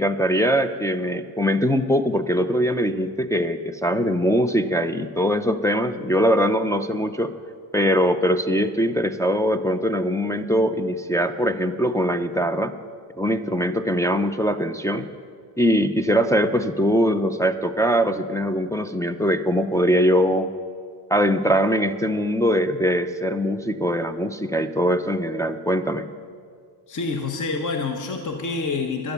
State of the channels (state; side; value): normal; both; correlation 0.62